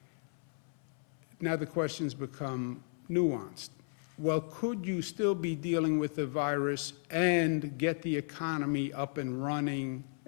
Now the questions become nuanced. Well, could you still be dealing with the virus and get the economy up and running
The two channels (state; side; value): silent; right; 55 dB below the other